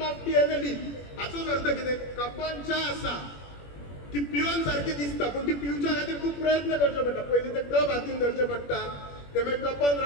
of T end a leaf. हाचोच अर्थ कितें, कपान च्या आसा ती पिवन सारखी दिसता, पण ती पिवच्या खातीर खूप प्रयत्न करचे पडटा. पयलीं ते कप हातीन धरचे पडटा, ते मागीर कपान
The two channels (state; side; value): late; right; 21 ms